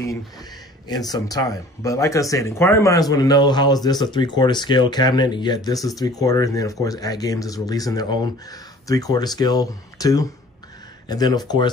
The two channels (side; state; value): both; normal; correlation 0.49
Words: in some time. But like I said, inquiring minds want to know, how is this a 3/4 scale cabinet, and yet this is 3/4, and then of course ArcGames is releasing their own 3/4 scale too. And then of